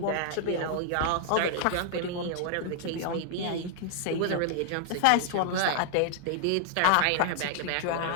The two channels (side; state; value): both; different; correlation 0.00